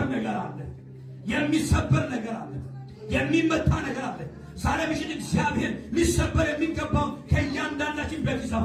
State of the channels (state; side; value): identical; both; correlation 1.00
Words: ነገር አለ። የሚሰበር ነገር አለ። የሚመታ ነገር አለ። ዛሬ ምሽት እግዚአብሔር ሊሰበር የሚገባው ከእያንዳንዳችን ቤት